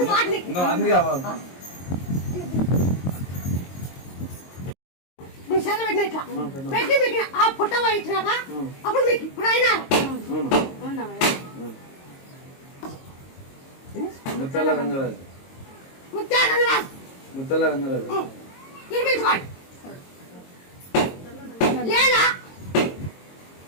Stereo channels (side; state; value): right; late; 22 ms